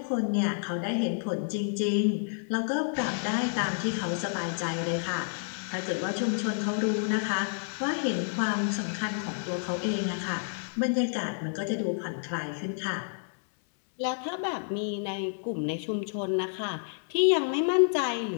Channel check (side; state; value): right; silent; 58 dB below the other